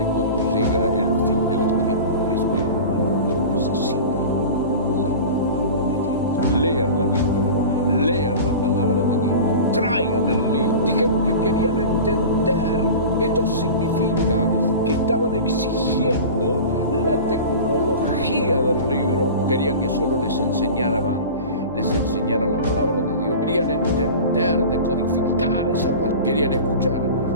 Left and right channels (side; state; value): both; inverted; correlation -0.34